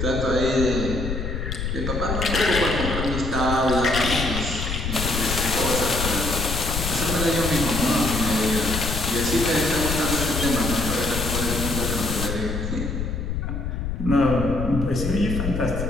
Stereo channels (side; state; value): left; noise; rumble, 3 dB below the sound